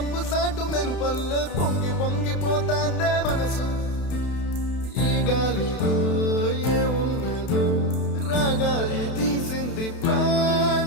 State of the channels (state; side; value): late; right; 32 ms